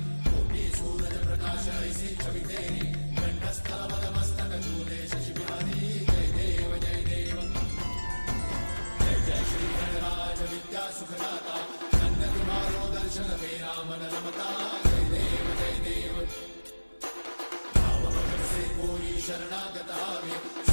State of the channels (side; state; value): both; inverted; correlation -1.00